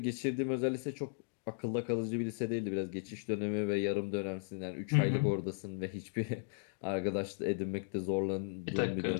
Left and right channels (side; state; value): right; silent; digital silence